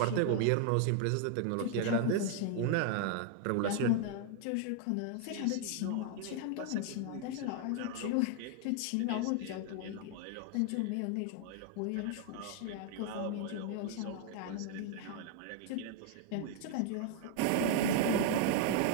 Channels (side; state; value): both; different; correlation 0.00